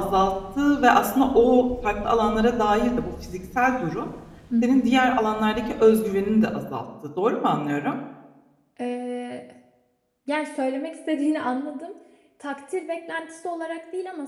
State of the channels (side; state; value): both; identical; correlation 1.00